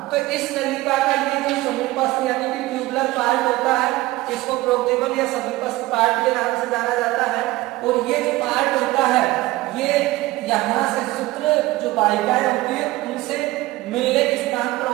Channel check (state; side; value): quieter; left; 18.8 dB